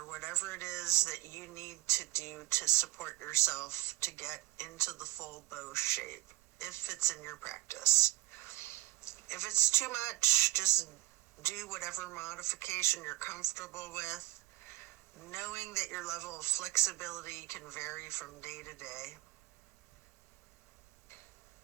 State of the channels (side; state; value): left; quieter; 18.7 dB